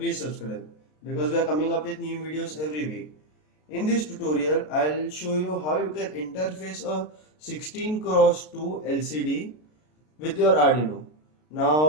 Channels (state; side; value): late; right; 33 ms